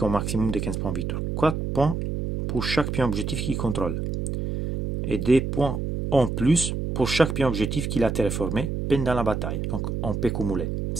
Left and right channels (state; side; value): noise; right; hum, 3 dB below the sound